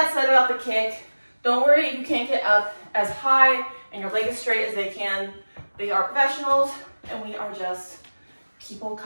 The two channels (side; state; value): both; inverted; correlation -1.00